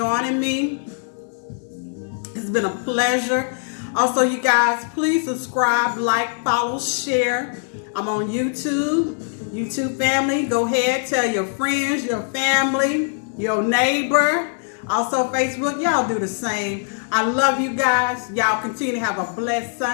me. It's been a pleasure. Also, you guys, please subscribe, like, follow, share. I'm on YouTube. YouTube family, go ahead, tell your friends, your family, your neighbor. Also, Facebook, y'all do the same. I love you guys. Y'all continue to have a blessed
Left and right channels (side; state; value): right; silent; digital silence